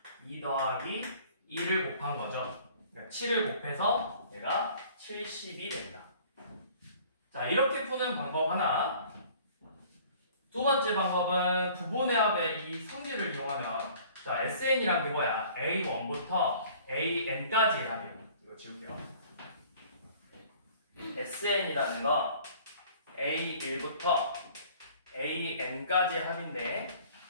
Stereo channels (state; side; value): inverted; both; correlation -0.51